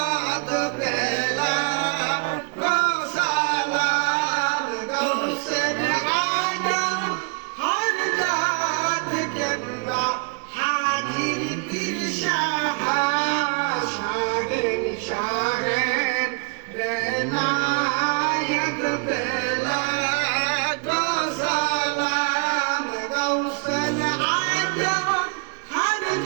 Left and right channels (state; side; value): quieter; left; 34.9 dB